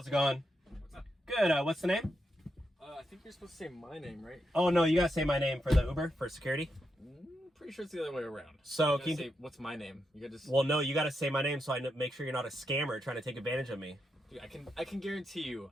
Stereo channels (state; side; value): normal; both; correlation 0.84